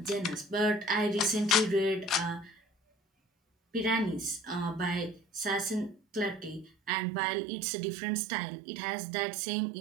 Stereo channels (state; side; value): drops out; left; at 6.9 s